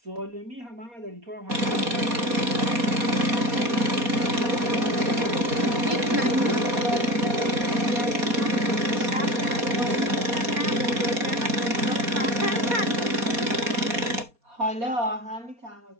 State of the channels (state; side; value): late; left; 4.2 ms